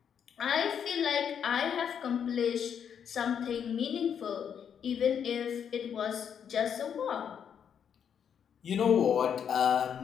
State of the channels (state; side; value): quieter; right; 8.0 dB